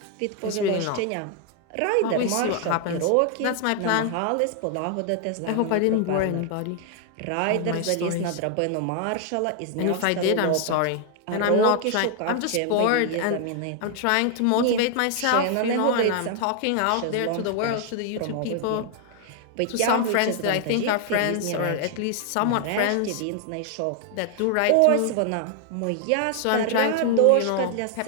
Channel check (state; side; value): different; both; correlation 0.00